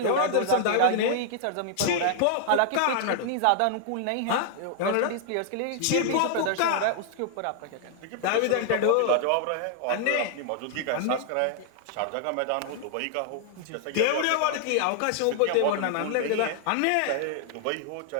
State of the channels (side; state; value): both; different; correlation 0.00